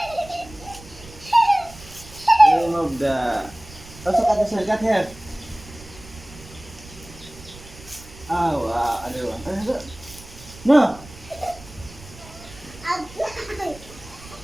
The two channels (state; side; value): noise; right; rumble, 19 dB below the sound